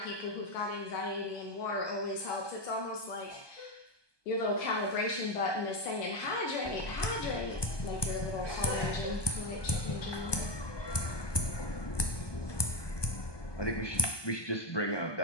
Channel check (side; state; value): right; late; 1.2 ms